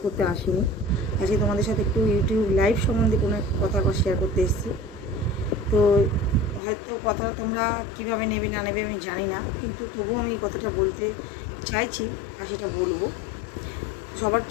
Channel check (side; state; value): right; drops out; at 6.6 s